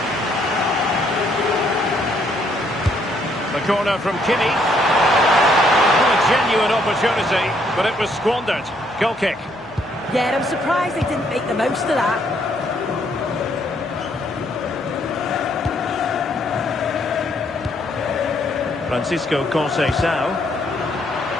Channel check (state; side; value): noise; right; hum, 28 dB below the sound